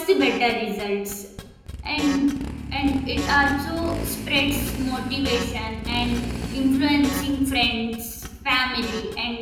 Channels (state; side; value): identical; both; correlation 1.00